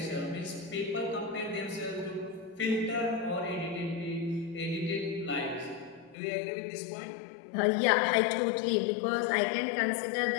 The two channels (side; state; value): right; drops out; at 6.2 s